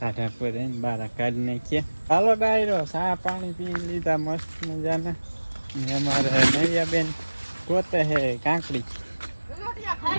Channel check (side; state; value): both; inverted; correlation -1.00